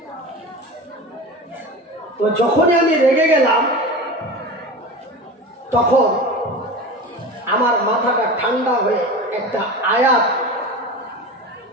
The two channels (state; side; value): normal; both; correlation 0.31